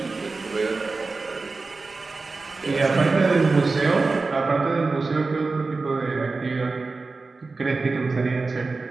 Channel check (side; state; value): left; quieter; 3.8 dB